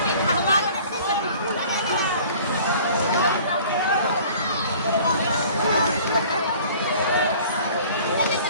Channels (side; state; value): both; inverted; correlation -0.48